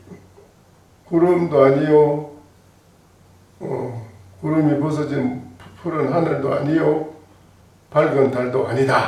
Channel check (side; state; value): both; identical; correlation 1.00